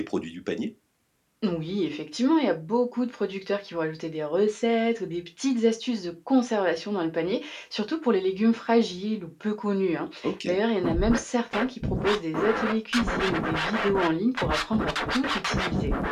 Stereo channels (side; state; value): both; identical; correlation 1.00